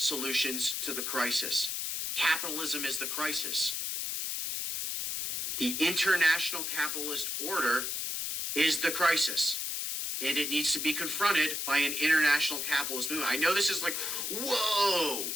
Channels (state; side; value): noise; left; hiss, 2 dB below the sound